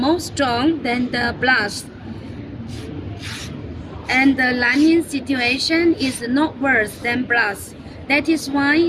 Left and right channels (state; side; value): identical; both; correlation 1.00